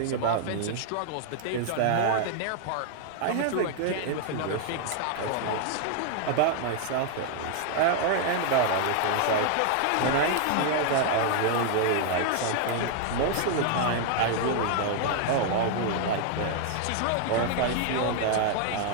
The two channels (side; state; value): both; different; correlation 0.00